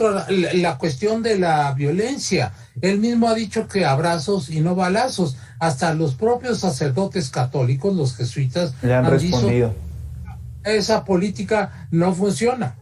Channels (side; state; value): both; identical; correlation 1.00